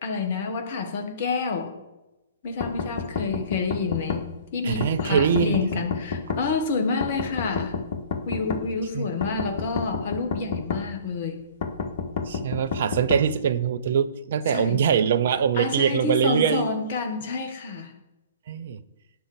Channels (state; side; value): inverted; both; correlation -0.47